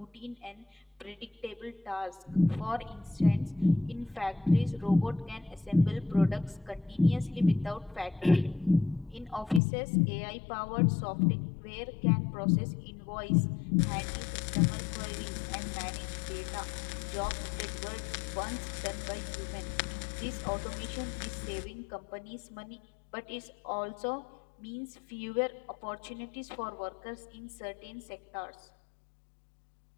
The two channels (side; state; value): right; drops out; at 9.6 s